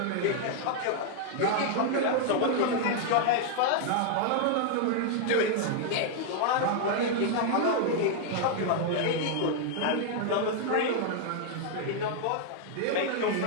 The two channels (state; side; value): different; both; correlation 0.00